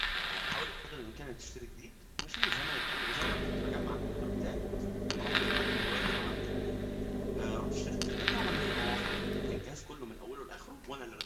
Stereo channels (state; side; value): identical; both; correlation 1.00